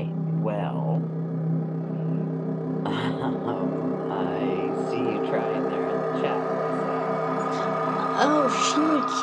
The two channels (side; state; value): both; identical; correlation 1.00